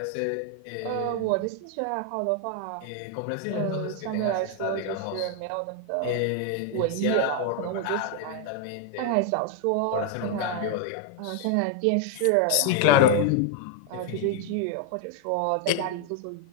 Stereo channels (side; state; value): both; different; correlation 0.00